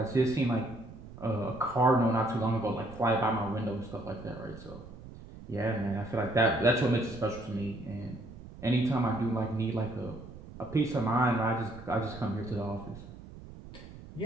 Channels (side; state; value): right; noise; rumble, 16 dB below the sound